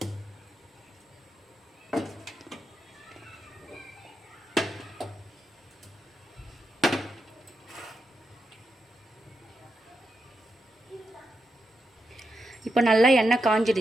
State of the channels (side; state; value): both; normal; correlation 0.85